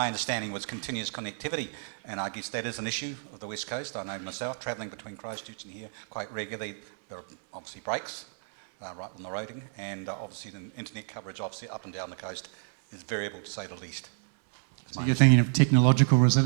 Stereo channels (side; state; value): left; silent; 58 dB below the other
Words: understanding was continuous connectivity, and I guess that is an issue of the West Coast. I know myself, travelling between Christchurch and here quite regularly, there are obviously breaks right on the roading, and obviously the internet coverage obviously up and down the coast is variable to say the least. So you're thinking of technological